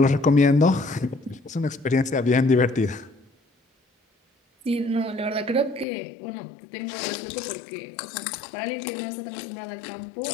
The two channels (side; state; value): right; drops out; at 5.9 s